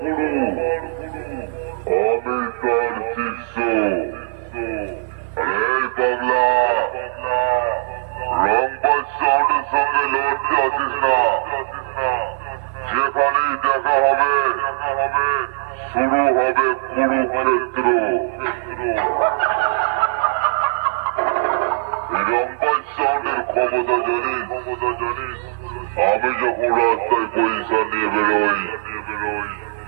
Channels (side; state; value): left; silent; 56 dB below the other